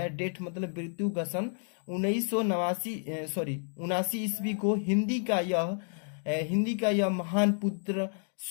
डेट मतलब मृत्यु का सन 1979 ईस्वी को हिंदी का यह महान पुत्र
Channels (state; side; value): silent; right; 57 dB below the other